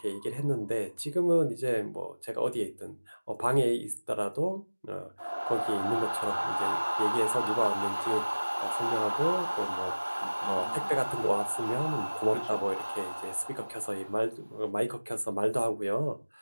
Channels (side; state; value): both; inverted; correlation -1.00